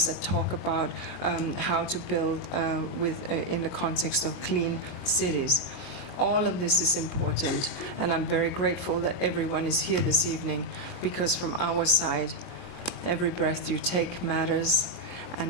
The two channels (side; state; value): right; late; 22 ms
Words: that talk about how to build in the context of clean cities. All of this is important, and I'm very grateful that everyone is here this evening, because from our side, every breath you take matters,